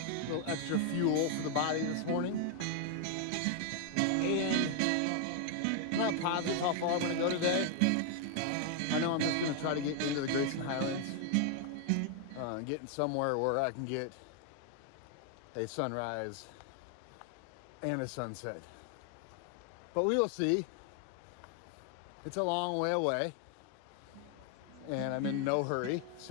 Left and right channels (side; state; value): both; different; correlation 0.00